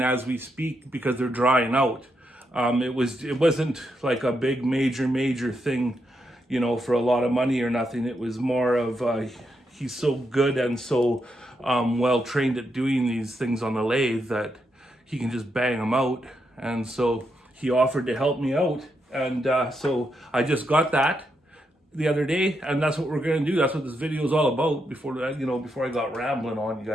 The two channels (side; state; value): both; normal; correlation 0.82